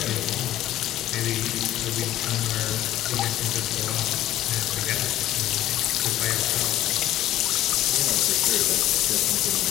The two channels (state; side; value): quieter; right; 13.9 dB